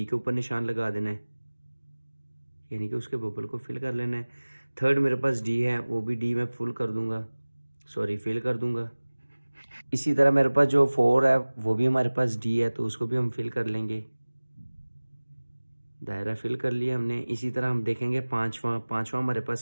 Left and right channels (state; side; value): inverted; both; correlation -1.00